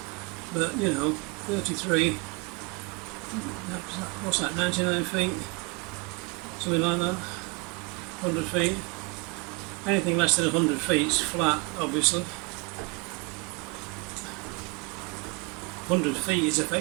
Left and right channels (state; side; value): quieter; left; 26.7 dB